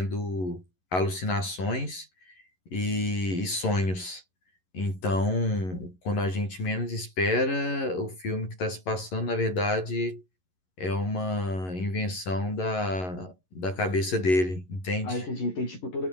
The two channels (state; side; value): late; right; 11 ms